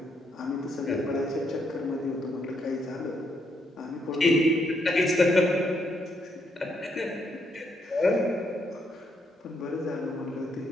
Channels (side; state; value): both; normal; correlation 0.75